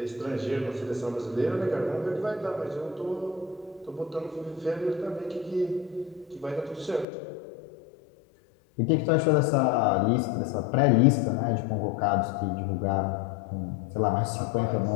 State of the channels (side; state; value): right; drops out; at 7.1 s